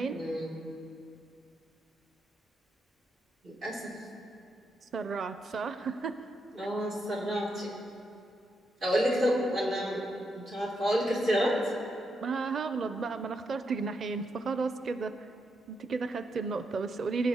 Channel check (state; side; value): normal; both; correlation 0.82